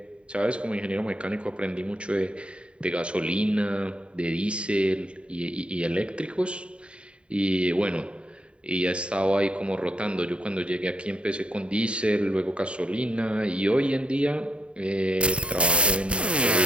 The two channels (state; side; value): late; left; 0.057 ms